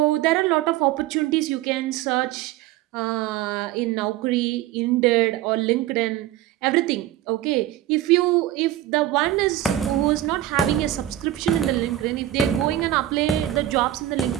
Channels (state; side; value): quieter; left; 13.4 dB